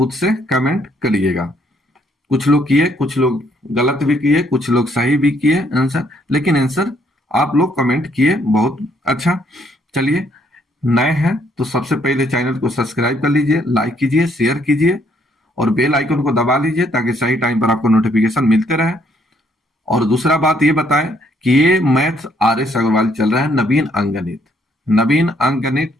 से कमेंट करिएगा। कुछ लोग किए, कुछ लोग गलत भी किए, कुछ लोग सही भी किए आंसर, लेकिन आंसर आप लोग कमेंट किए, बहुत अच्छा। चलिए, नए हैं तो सबसे पहले चैनल को सब्सक्राइब कर लीजिए, लाइक कीजिए, शेयर कीजिए और बेल आइकन को दबा लीजिए ताकि सही टाइम पर आपको नोटिफिकेशन मिलते रहे। और दूसरा बात ये बताएं कि ये मैथ आर एस अग्रवाल चल रहा है, नवीन अंकगणित। नवीन अंकगणित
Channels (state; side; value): normal; both; correlation 0.68